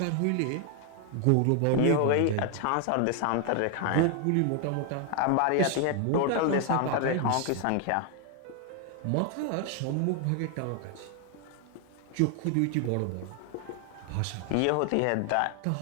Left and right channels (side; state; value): both; different; correlation 0.00